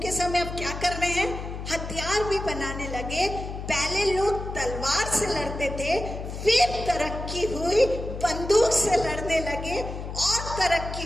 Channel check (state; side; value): noise; left; hum, 7 dB below the sound